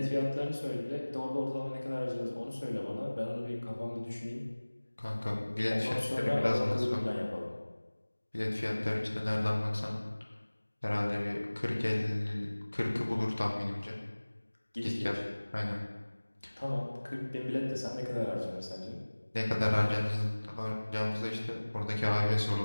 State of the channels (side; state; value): both; inverted; correlation -1.00